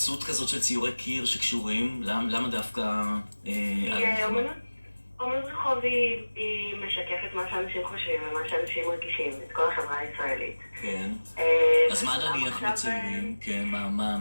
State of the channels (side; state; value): both; inverted; correlation -1.00